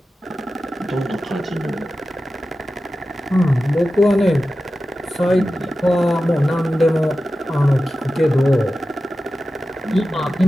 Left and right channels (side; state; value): both; normal; correlation 0.93